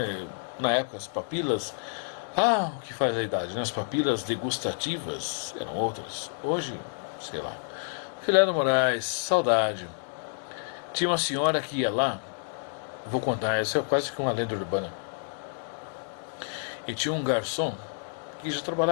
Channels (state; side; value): silent; right; digital silence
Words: na época as papilas. Ah, o que faz a idade, né? As papilas degustativas eram outras. Hoje, sei lá. Filé do Moraes, saudade. Tinha uma senhora que ia lá, vou contar, essa é quase que uma lenda urbana. E tinha um garçom que já